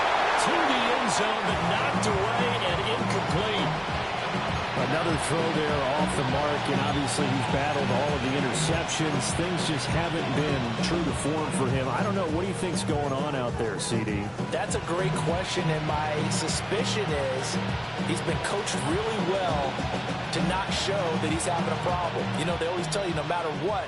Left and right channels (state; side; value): identical; both; correlation 1.00